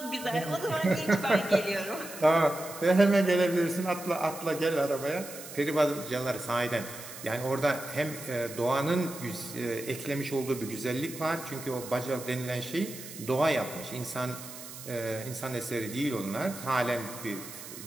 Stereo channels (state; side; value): noise; right; hiss, 13 dB below the sound